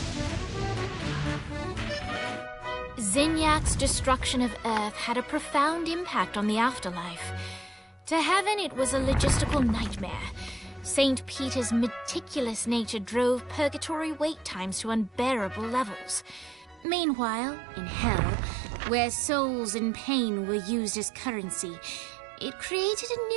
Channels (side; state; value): left; drops out; at 16.9 s